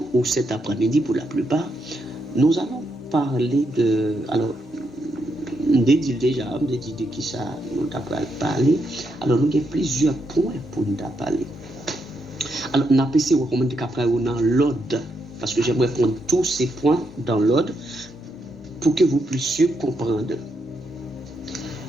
ou cet après-midi pour la plupart, nous allons parler de... Alors, déjà, de qui ça nous avons parlé. Alors, nous avons plusieurs points pour nous parler. Alors, nous avons essayé de recommander qu'après, dans l'ordre, parce que j'aimerais prendre tous ces points dans l'ordre, pour que vous puissiez comprendre.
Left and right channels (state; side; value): normal; both; correlation 0.80